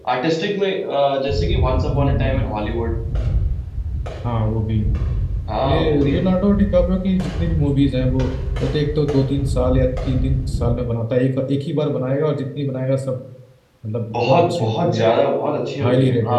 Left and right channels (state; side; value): identical; both; correlation 1.00